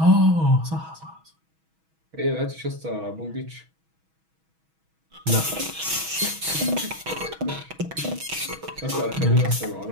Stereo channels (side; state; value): left; late; 6.2 ms